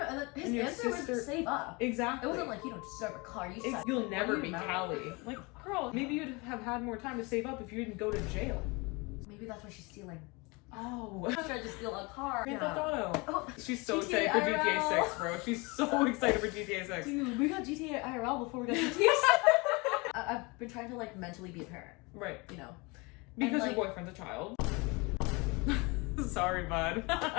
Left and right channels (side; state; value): right; quieter; 27.0 dB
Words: and then his And your answer sister- was save up. Exactly. It wasn't like, you don't deserve a car, you suck. You'll never What are be you mad Callie. at? Like, girl, maybe you'd have had more time to save up if you didn't go to jail. Maybe that's why she's stealing. Oh. She tried to steal a car. Grand Theft Auto. Oh, She's so GTA excited for IRL. GTA 6, bro. She's so excited for GTA 6. dude, we got GTA IRL before we got GTA 6. I've been trying to, like, mentally be a parent, Right. you know? Because And, your like- boyfriend's a child. Sorry, bud.